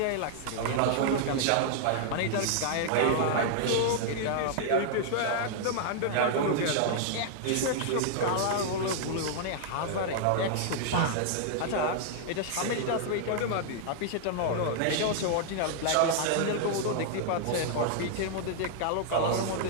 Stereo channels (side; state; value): both; different; correlation -0.01